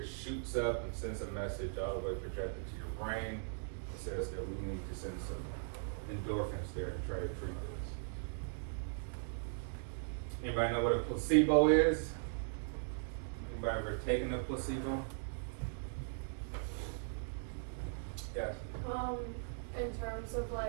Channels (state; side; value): silent; left; digital silence